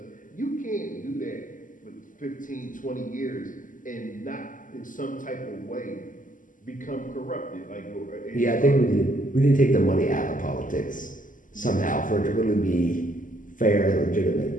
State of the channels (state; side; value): late; right; 0.38 ms